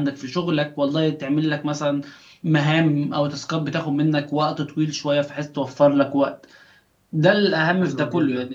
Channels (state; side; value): identical; both; correlation 1.00